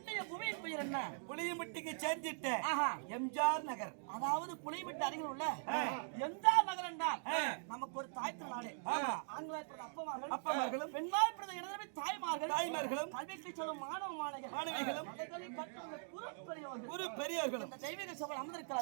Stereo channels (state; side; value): silent; left; digital silence